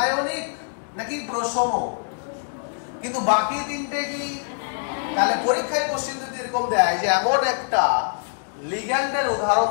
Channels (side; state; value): right; silent; digital silence